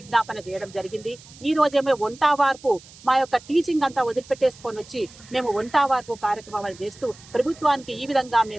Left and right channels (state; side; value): noise; right; hiss, 22 dB below the sound